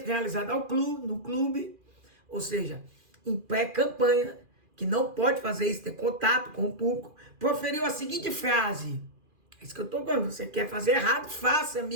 realizado no clube, ou seja, em pré-campanha, que não pode fazer isso, ter contato com o público, proferiu a seguinte frase. É isso que eu estou falando. Você quer fazer errado? Faça,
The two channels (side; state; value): left; late; 2.4 ms